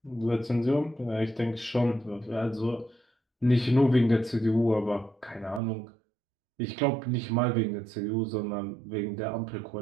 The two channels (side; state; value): left; drops out; at 5.6 s